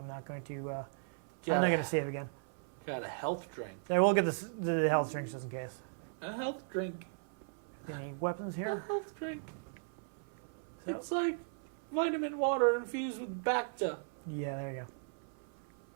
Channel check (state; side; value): silent; left; 53 dB below the other